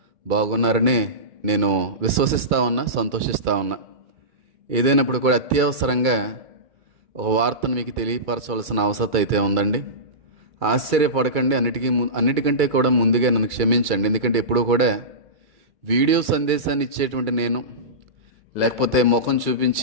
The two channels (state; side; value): late; left; 2.3 ms